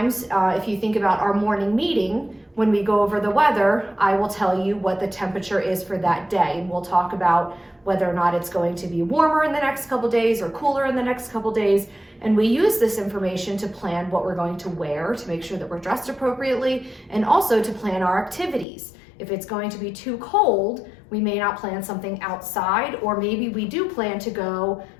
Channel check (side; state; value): right; drops out; at 18.7 s